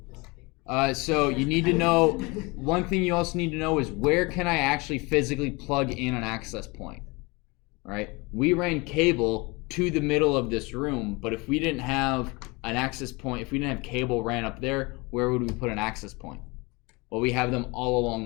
So you need to know, one thing you also need to know is where can I actually physically plug in an access point, right? We ran cable to the middle of this room, but if we didn't have an access point, if we didn't have cable ran up there, where would we put an access point? Well, we have them all along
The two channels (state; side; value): quieter; right; 26.2 dB